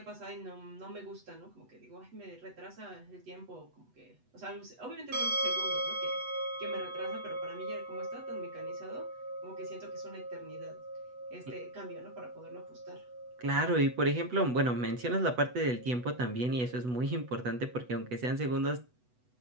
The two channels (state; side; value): late; left; 8.1 ms